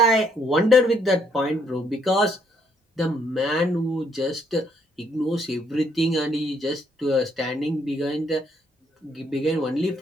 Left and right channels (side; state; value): both; normal; correlation 0.69